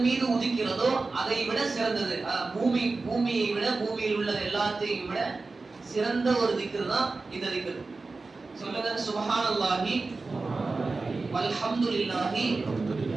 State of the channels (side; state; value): left; quieter; 3.8 dB